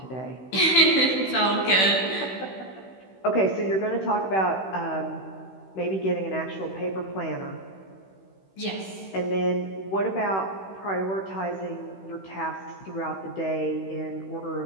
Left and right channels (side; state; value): right; late; 16 ms